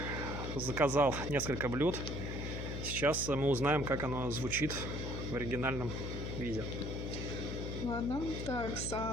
Заказал несколько блюд. Сейчас мы узнаем, как оно звучит в оригинальном виде. Ладно, так,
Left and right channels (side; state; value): left; noise; hum, 4 dB below the sound